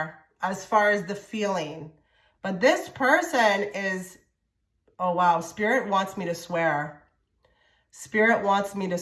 as far as the feeling. But this person is, oh wow, Spirit wants me to swear. Spirit wants me to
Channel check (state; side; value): identical; both; correlation 1.00